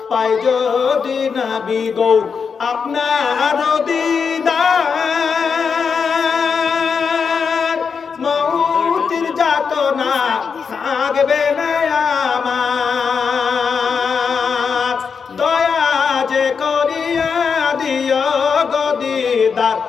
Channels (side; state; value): right; quieter; 5.9 dB